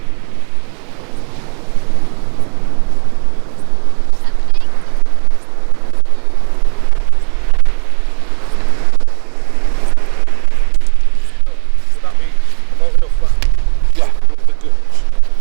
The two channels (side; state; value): left; quieter; 39.7 dB